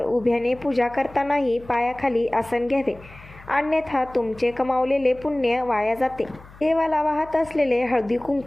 उभ्याने पूजा करतानाही पायाखाली आसन घ्यावे, अन्यथा तुमचे कमावलेले पुण्य वाया जाते. देवाला वाहत असलेले हळदी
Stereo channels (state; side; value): noise; left; hum, 21 dB below the sound